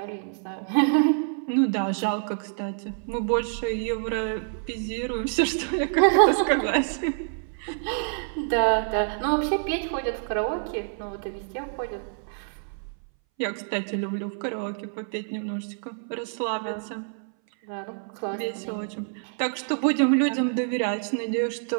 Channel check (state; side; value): silent; left; 60 dB below the other